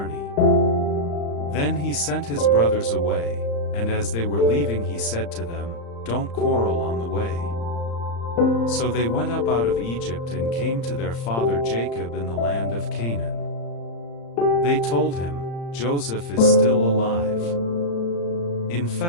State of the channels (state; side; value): late; right; 35 ms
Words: Then he sent his brothers away, and as they were leaving he said to them, "Don't quarrel on the way." So they went up out of Egypt and came to their father Jacob in the land of Canaan. They told him, "Joseph is still alive. In